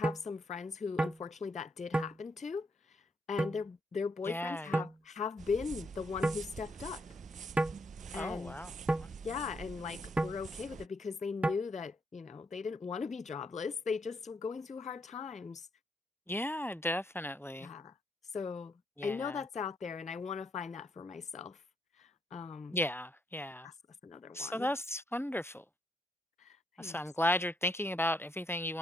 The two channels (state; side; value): normal; both; correlation 0.76